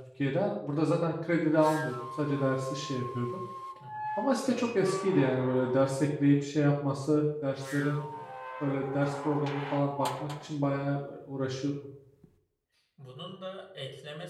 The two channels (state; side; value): identical; both; correlation 1.00